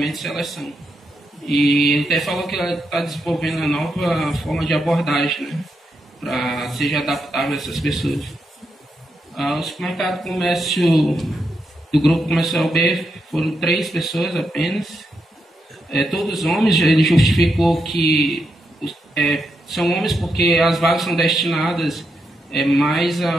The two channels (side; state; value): both; normal; correlation 0.83